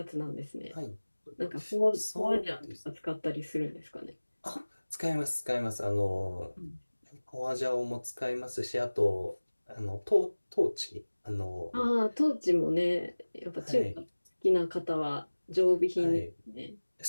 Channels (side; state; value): both; inverted; correlation -1.00